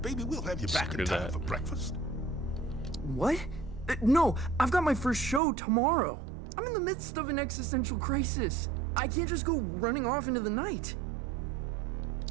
baby, we'll have you back in time for breakfast. What? No, I've got my first show tomorrow. I'm in the midst of an existential crisis. I can't just go running off into the night.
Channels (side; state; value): left; drops out; at 5.4 s